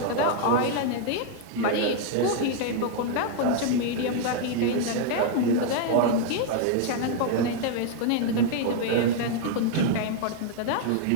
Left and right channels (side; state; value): both; different; correlation -0.01